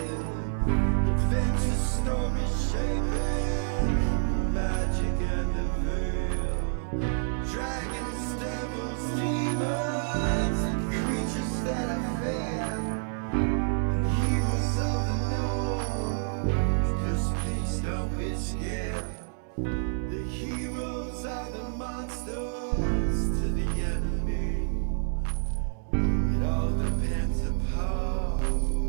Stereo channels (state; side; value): silent; left; 59 dB below the other